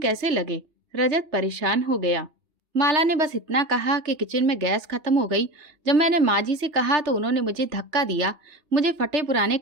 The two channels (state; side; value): late; left; 3.3 ms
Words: लगे? रजत परेशान हो गया। माला ने बस इतना कहा कि किचन में गैस खत्म हो गई। जब मैंने माँ जी से कहा तो उन्होंने मुझे धक्का दिया, मुझे फटे पुराने